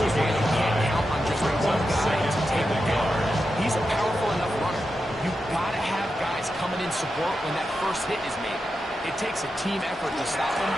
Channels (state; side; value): normal; both; correlation 0.88